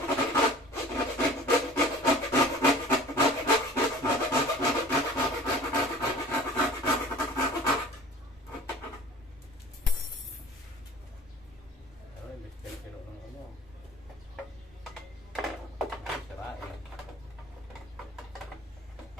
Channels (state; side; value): normal; both; correlation 0.45